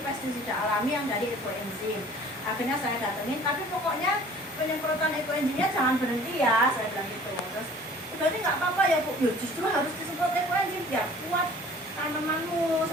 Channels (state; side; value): normal; both; correlation 0.49